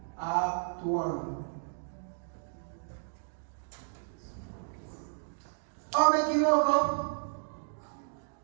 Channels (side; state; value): left; silent; digital silence